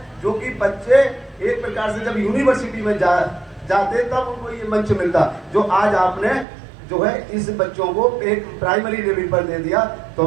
जो कि बच्चे एक प्रकार से जब यूनिवर्सिटी में जाते तब उनको ये मंच मिलता, जो आज आपने जो है इस बच्चों को एक प्राइमरी लेवल पर दे दिया।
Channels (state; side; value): drops out; left; at 6.5 s